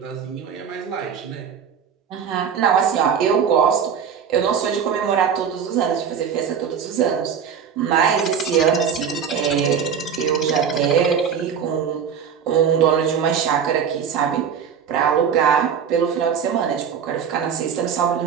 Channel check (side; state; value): left; quieter; 7.4 dB